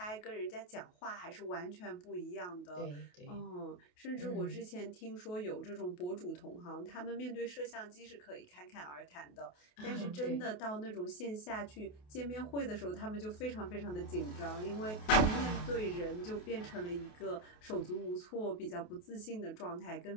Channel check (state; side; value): late; right; 28 ms